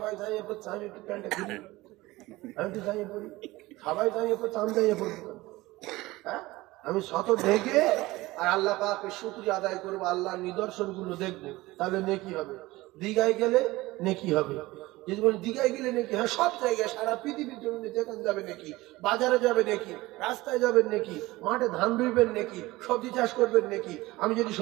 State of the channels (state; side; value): quieter; left; 19.5 dB